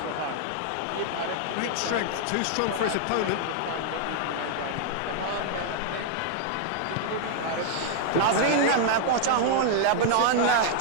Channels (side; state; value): both; different; correlation 0.00